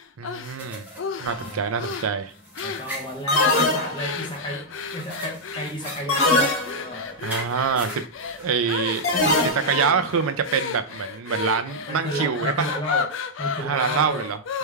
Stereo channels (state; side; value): normal; both; correlation -0.04